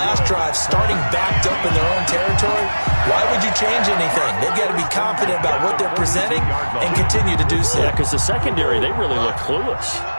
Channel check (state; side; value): inverted; both; correlation -1.00